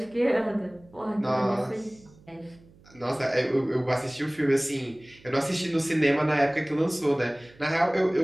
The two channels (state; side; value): noise; right; hum, 26 dB below the sound